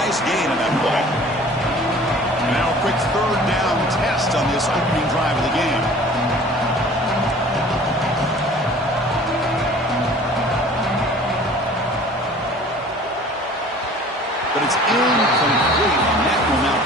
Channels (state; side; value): normal; both; correlation 0.47